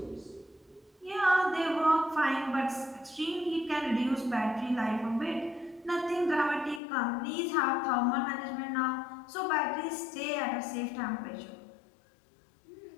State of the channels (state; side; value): drops out; right; at 6.8 s